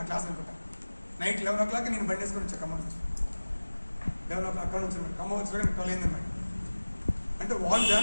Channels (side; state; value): both; inverted; correlation -1.00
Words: క్లాస్ అనుకుంటా. నైట్ 11 o'clock నేను బండి వేసుకొని వచ్చాను ఖమ్మం నుంచి. 11 o'clock అక్కడ నుంచి ఖమ్మం వచ్చి 12 అయిందన్నమాట. అంటే వాళ్ళు